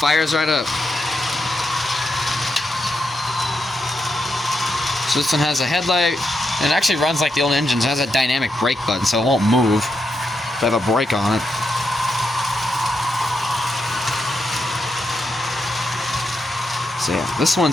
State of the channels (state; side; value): normal; both; correlation 0.83